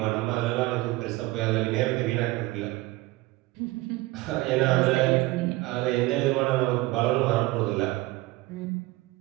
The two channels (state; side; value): quieter; left; 19.9 dB